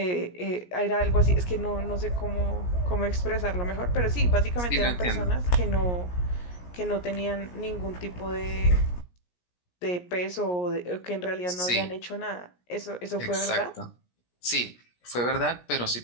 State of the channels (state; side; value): late; right; 17 ms